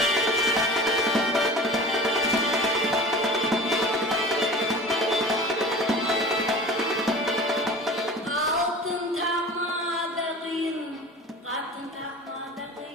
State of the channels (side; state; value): both; normal; correlation 0.38